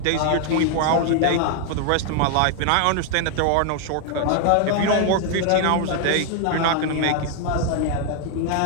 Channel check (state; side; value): different; both; correlation 0.00